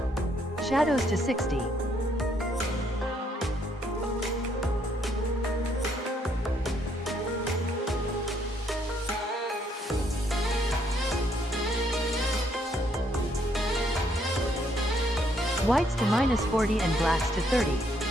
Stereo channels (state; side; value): normal; both; correlation 0.70